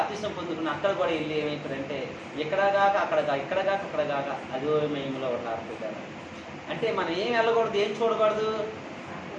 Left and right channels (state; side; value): identical; both; correlation 1.00